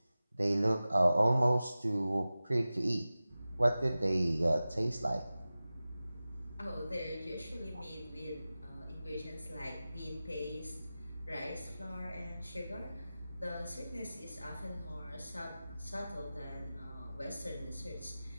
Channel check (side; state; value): both; inverted; correlation -0.96